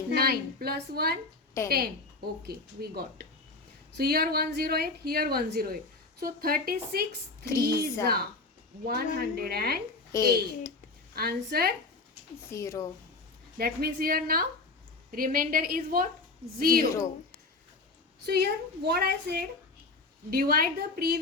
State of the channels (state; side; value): quieter; right; 3.6 dB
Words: plus 1 10. 10. Okay, we got. So here 108, here 108. So 36 3s are 108. Answer. 0. That means here now remainder is what? 0. So here what I said, divide the